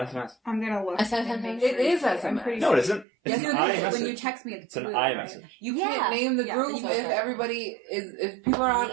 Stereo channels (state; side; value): drops out; left; at 3.1 s